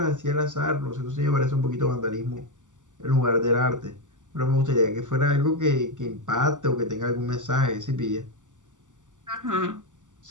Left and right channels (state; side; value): late; left; 0.87 ms